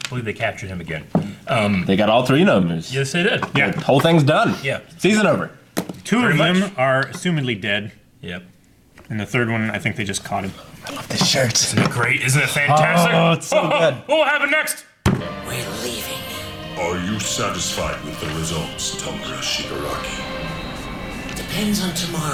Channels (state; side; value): identical; both; correlation 1.00